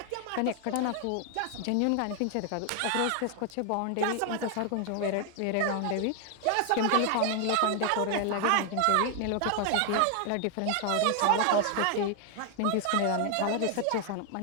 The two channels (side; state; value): both; different; correlation 0.00